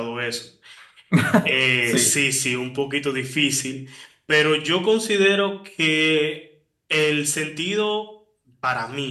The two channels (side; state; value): both; identical; correlation 1.00